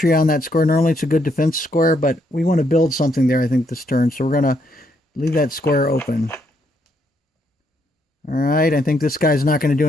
on that square. Normally it's a good defense square, but we want to build something there, I think, this turn. So we're going to leave that square open. All right, I think this guy's not going to do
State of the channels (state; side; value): normal; both; correlation 0.74